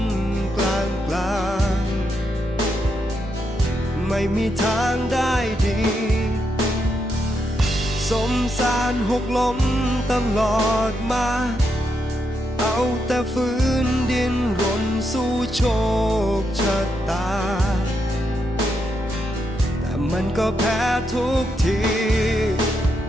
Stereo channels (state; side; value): normal; both; correlation 0.81